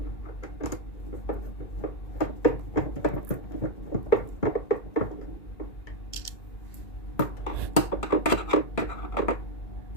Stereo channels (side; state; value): right; late; 2.5 ms